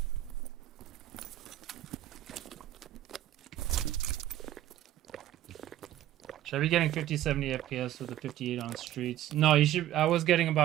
Should I be getting 50, 70 FPS with the 58 on streets? No, you should. I was getting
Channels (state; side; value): quieter; left; 13.4 dB